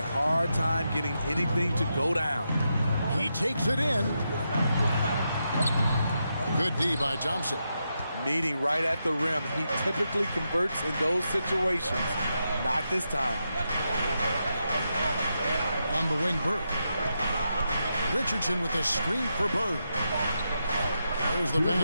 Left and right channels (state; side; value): inverted; both; correlation -0.85